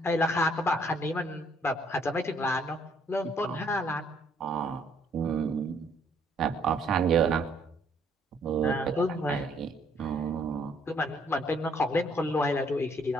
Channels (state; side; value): normal; both; correlation 0.66